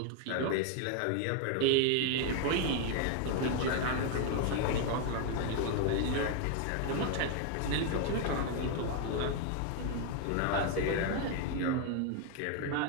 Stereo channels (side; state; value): both; different; correlation 0.00